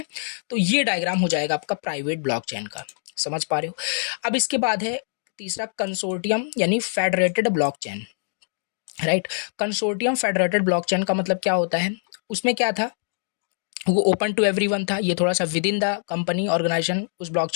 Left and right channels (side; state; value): right; silent; digital silence